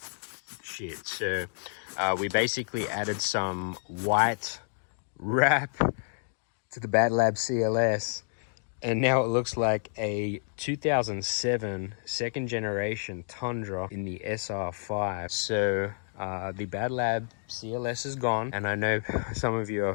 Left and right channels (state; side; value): silent; right; digital silence